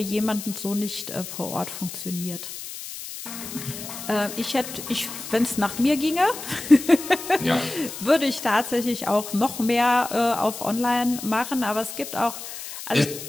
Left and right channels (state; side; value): noise; left; hiss, 10 dB below the sound